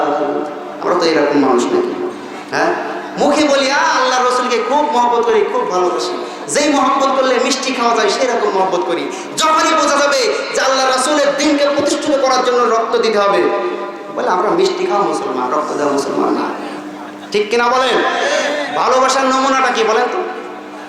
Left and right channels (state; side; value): identical; both; correlation 1.00